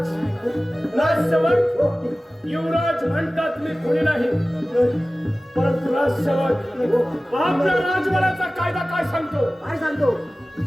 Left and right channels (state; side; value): normal; both; correlation 0.97